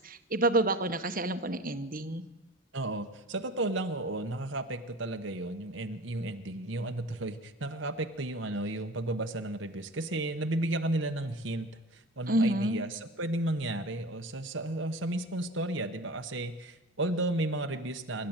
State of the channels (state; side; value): normal; both; correlation 0.36